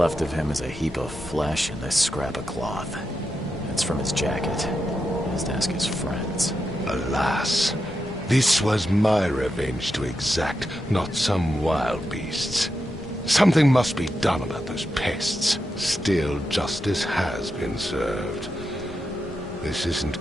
of him is a heap of flesh and this scrap of cloth. It's from his jacket. Just ask his friends. Alas, this was my revenge to exact, not some wild beast's. Something must be done about those pests. Still, justice has been served. This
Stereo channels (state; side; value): normal; both; correlation 0.87